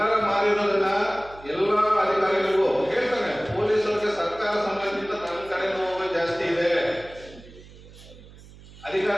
ಮಾರಿರೋದನ್ನ ಎಲ್ಲ ಅಧಿಕಾರಿಗಳಿಗೂ ಹೇಳ್ತಾನೆ, ಪೊಲೀಸರಿಗೆ ಸರ್ಕಾರ ಸಂಬಂಧಿತ ನನ್ನ ಕಡೆ ನೋವು ಜಾಸ್ತಿ ಇದೆ.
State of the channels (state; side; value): noise; right; hum, 20 dB below the sound